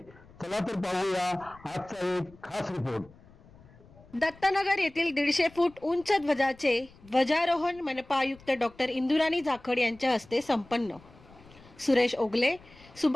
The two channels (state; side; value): noise; left; rumble, 24 dB below the sound